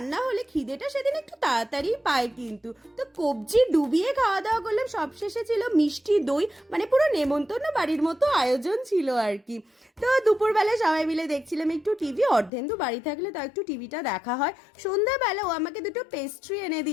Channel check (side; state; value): right; drops out; at 12.5 s